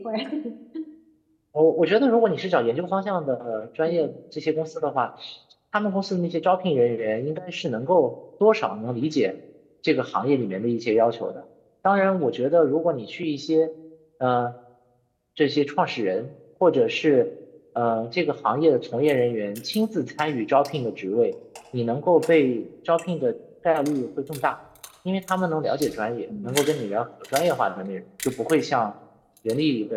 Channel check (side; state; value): both; identical; correlation 1.00